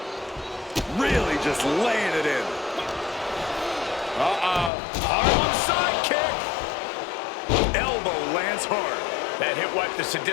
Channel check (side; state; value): right; drops out; at 4.7 s